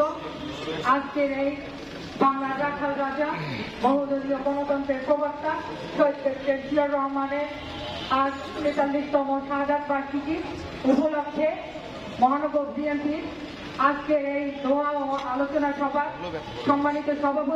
আজকের এই বাংলার রাখাল রাজা বহুদলীয় গণতন্ত্রের প্রবক্তা শহীদ প্রেসিডেন্ট জিয়াউর রহমানের আজ ৪৩তম শাহাদাত বার্ষিকী উপলক্ষে মহানগর বিএনপির আজকের এই দোয়া ও আলোচনা সভা সম্মানিত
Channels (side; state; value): both; identical; correlation 1.00